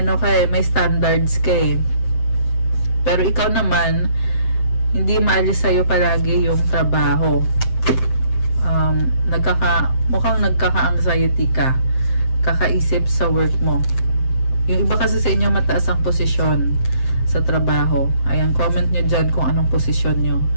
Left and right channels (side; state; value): right; late; 7.7 ms